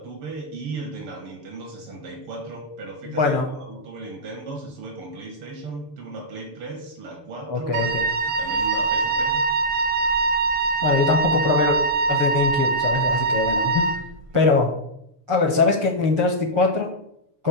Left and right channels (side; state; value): left; late; 6.9 ms